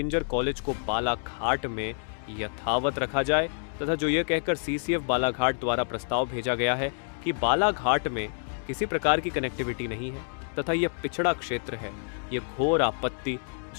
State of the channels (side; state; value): right; silent; digital silence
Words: कॉलेज को बालाघाट में यथावत रखा जाए तथा जो यह कहकर सीसीएफ बालाघाट द्वारा प्रस्ताव भेजा गया है कि बालाघाट में किसी प्रकार की कनेक्टिविटी नहीं है तथा यह पिछड़ा क्षेत्र है, यह घोर